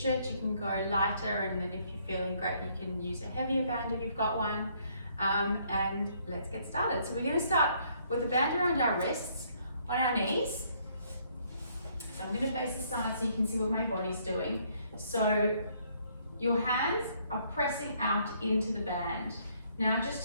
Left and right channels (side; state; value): both; inverted; correlation -0.67